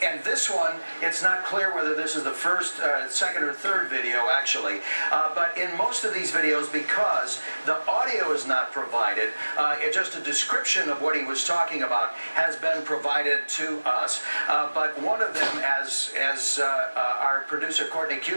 this one, it's not clear whether this is the first, second, or third video, actually. But in most of these videos, because the audio is not provided, just a description of what he was talking about has been provided to us. But one of them, as our producer, Courtney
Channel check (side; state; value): both; inverted; correlation -1.00